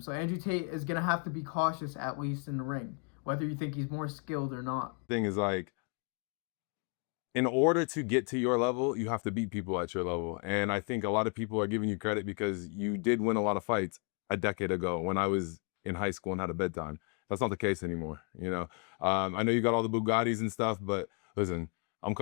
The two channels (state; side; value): quieter; right; 37.9 dB